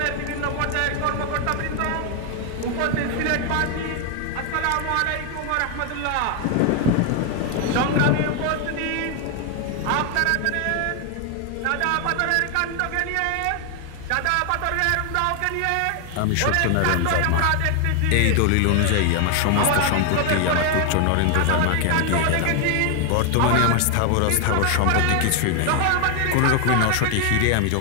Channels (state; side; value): different; both; correlation 0.00